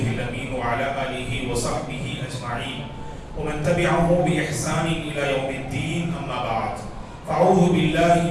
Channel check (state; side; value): identical; both; correlation 1.00